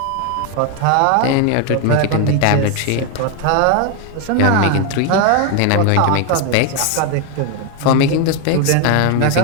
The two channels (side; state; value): both; different; correlation 0.01